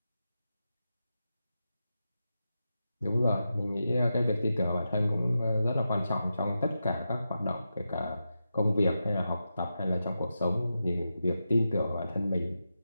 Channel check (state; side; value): inverted; both; correlation -0.89